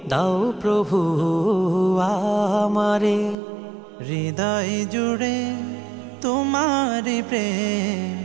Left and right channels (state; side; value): drops out; left; at 3.4 s